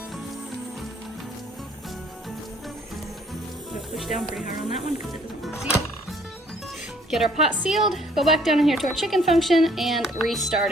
gonna push down pretty hard on that one because it doesn't want to seal. Get our pot sealed, go back down in here to our chicken function, and restart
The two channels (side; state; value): both; normal; correlation 0.61